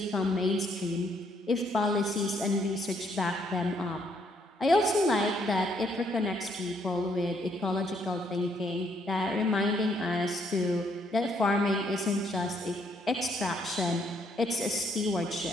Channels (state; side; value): normal; both; correlation 0.70